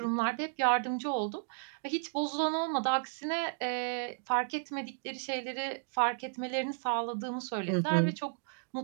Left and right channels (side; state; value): left; silent; digital silence